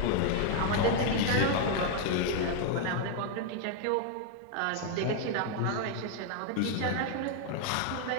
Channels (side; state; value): both; different; correlation 0.00